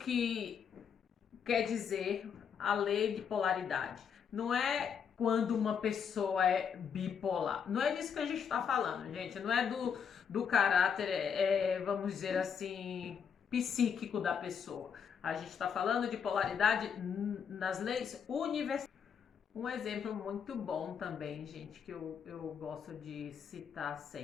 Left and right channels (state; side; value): quieter; right; 7.2 dB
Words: quer dizer a lei de polaridade. Não é quando uma pessoa é bipolar. Não é disso que a gente está falando, gente. Não é do caráter, vamos dizer assim, psíquico da pessoa. A gente está falando de polaridade nas leis universais. Um exemplo muito bom também, gente, que eu gosto de citar